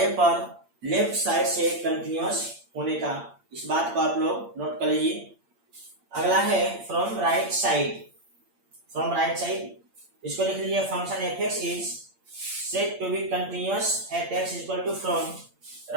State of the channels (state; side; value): late; left; 8.6 ms